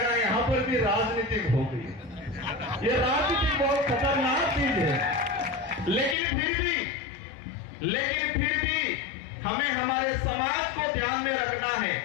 यहां पर भी राजनीतिक हो गई। ये राजनीति बहुत खतरनाक चीज है, लेकिन फिर भी हमें हमारे समाज को ध्यान में रखना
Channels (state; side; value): drops out; right; at 6.2 s